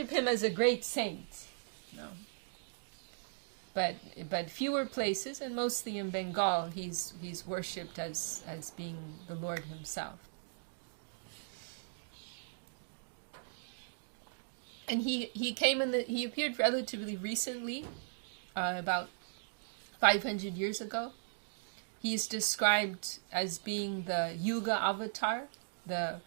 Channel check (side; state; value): left; silent; digital silence